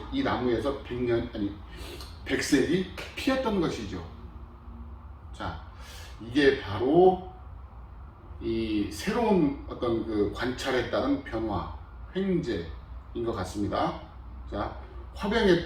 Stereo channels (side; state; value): both; identical; correlation 1.00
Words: 이 나무에서 백색이 피었던 것이죠. 자, 이게 바로 이 새로운 어떤 그 관찰에 따른 변화, 횡재인 것 같습니다. 자, 화병에